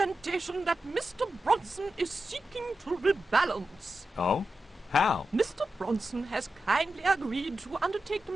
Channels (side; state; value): both; normal; correlation 0.91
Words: that Mr. Bronson is seeking to rebalance. Oh? How? Mr. Bronson has kindly agreed to undertake the